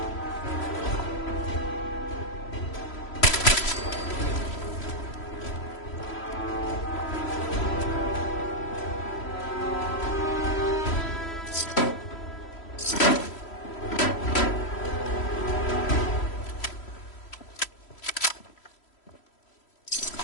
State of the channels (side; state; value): right; late; 3.1 ms